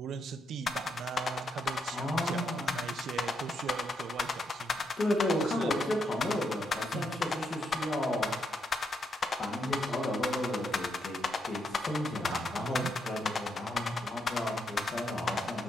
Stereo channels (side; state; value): both; normal; correlation 0.79